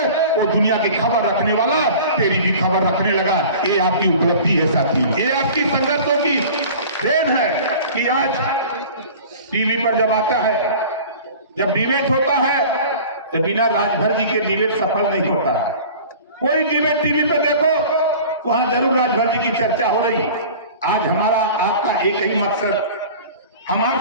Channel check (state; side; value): inverted; both; correlation -0.41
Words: वो दुनिया की खबर रखने वाला तेरी भी खबर रखने लगा। ये आपकी उपलब्धि है साथी, ये आपकी संघर्षों की देन है कि आज टीवी पर जब आता है, जब डिबेट होता है तो बिना राजभर जी के डिबेट सफल नहीं होता है। कोई डिबेट टीवी पे देखो, वहां जरूर राजभर जी की चर्चा हो रही। आज हमारा आपका एक ही मकसद, हम